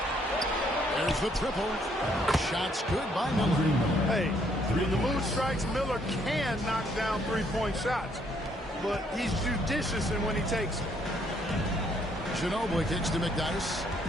There's the triple. Shot's good by Miller. Hey, when the mood strikes, Miller can knock down three-point shots. But he's judicious in when he takes them. Ginobili kicks to McDyess.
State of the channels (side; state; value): both; normal; correlation 0.68